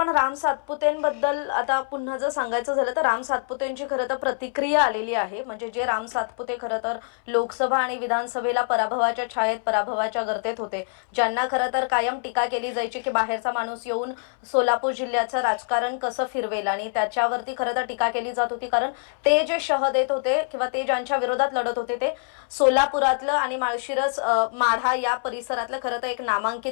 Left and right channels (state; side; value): silent; right; 62 dB below the other